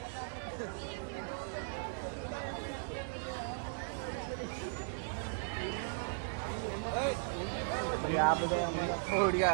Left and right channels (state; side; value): silent; left; 53 dB below the other